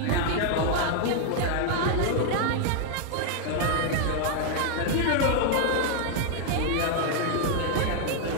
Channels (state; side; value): different; both; correlation 0.00